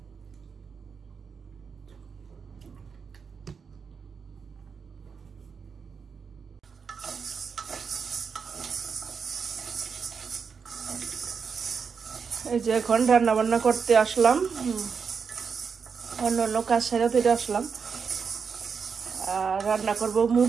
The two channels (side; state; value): left; quieter; 5.9 dB